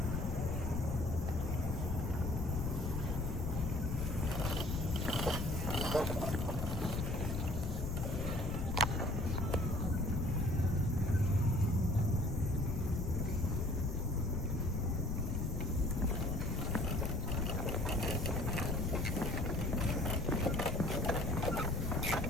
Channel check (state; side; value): noise; left; rumble, 2 dB below the sound